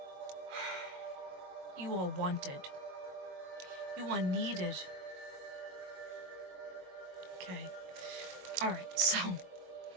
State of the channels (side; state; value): left; late; 22 ms